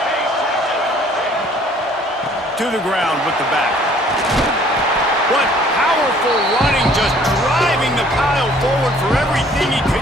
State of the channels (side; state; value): both; normal; correlation 0.57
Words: To the ground with the back. What powerful running, just driving the pile forward for everything he